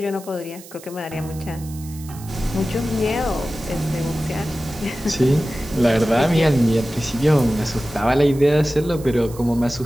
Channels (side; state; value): right; noise; hiss, 19 dB below the sound